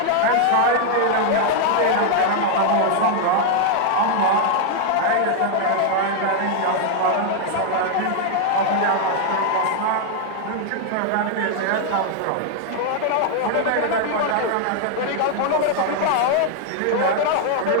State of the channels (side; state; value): both; different; correlation 0.00